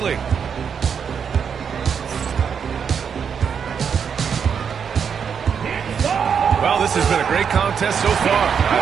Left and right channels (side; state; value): left; quieter; 7.0 dB